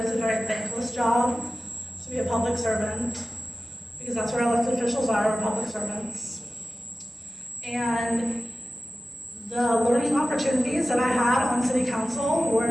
it's a very thankless job to be a public servant, because that's where elected officials are public servants. And the learning opportunities that I had on city council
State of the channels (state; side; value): normal; both; correlation 0.96